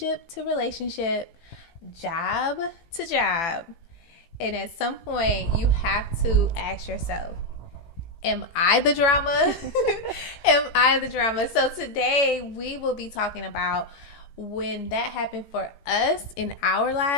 to relationship, job to job? And at some point, you have to ask yourself, am I the drama? Am I the drama? So today we will be talking about when that happened for us in our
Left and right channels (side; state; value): right; late; 18 ms